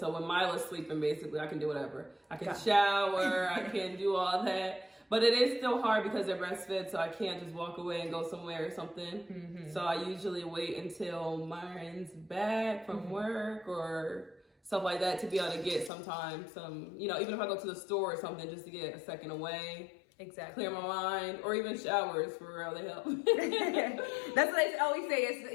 when Mila's sleeping, basically, I can do whatever. I can shower, I can do all that. But it is still hard because they're breastfed, so I can't just walk away and go somewhere or something. Mm-hmm. So I usually wait until Myron's back from work or stuff like that to be able to get some, you know, even if I go to the store or something, just to get a second away. Exactly. Clear my mind, or even showers for real, they help. That's what I always say, it's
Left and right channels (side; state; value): right; drops out; at 15.9 s